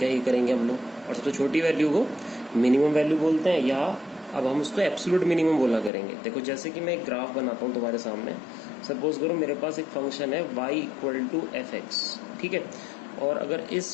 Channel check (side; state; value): right; drops out; at 5.9 s